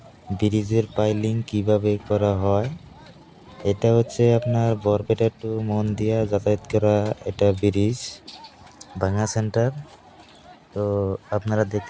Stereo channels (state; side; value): identical; both; correlation 1.00